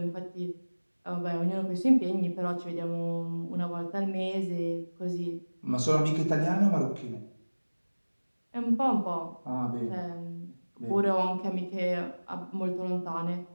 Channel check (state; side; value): inverted; both; correlation -1.00